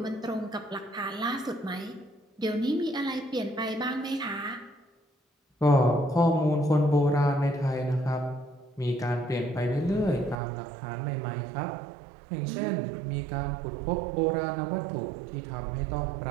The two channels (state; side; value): drops out; left; at 10.4 s